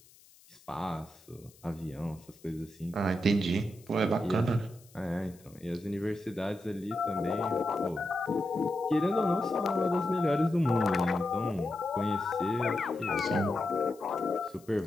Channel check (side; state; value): left; noise; hiss, 26 dB below the sound